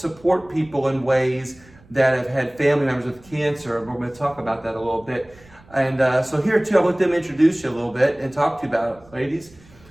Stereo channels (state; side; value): noise; right; rumble, 26 dB below the sound